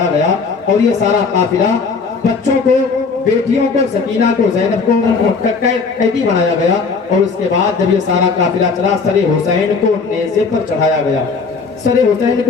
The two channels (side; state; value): right; quieter; 4.8 dB